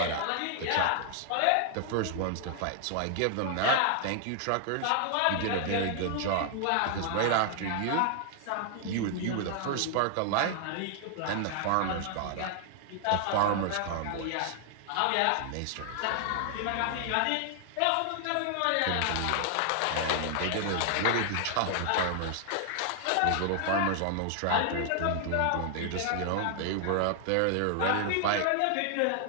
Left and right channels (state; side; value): different; both; correlation 0.00